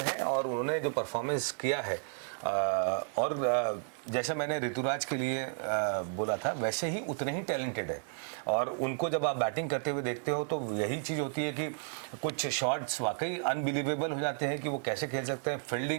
है और उन्होंने जो परफॉर्मेंस किया है और जैसा मैंने ऋतुराज के लिए बोला था वैसे ही उतने ही टैलेंटेड है। और उनको जब आप बैटिंग करते हुए देखते हो तो यही चीज़ होती है कि कुछ शॉट्स वाकई अनबिलीवेबल हो जाते हैं कि वो कैसे खेल सकते हैं।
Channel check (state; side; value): silent; left; digital silence